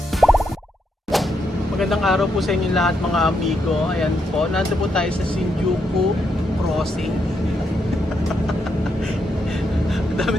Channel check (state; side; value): normal; both; correlation 0.80